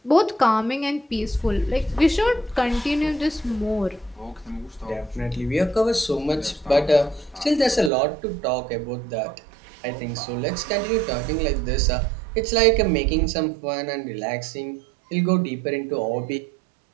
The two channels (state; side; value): drops out; left; at 7.9 s